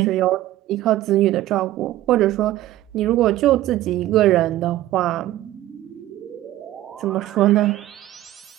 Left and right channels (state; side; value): quieter; left; 14.9 dB